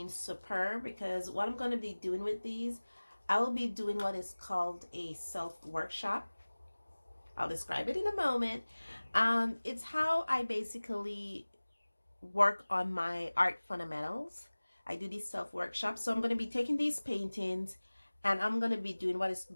superb because what I'm going to be doing with these, I will be doing what is called a self-workshop. I'll describe it in a moment. It's how I basically work on my art fundamentals. I do these self-workshops. So I'm going to be taking these paintings and I'm going to be doing what is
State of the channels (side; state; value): both; inverted; correlation -1.00